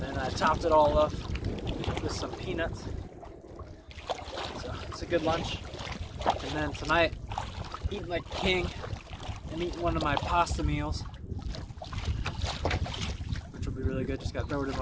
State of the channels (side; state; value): both; identical; correlation 1.00